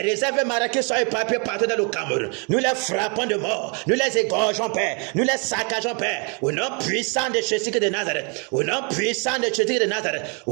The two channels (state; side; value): quieter; left; 35.7 dB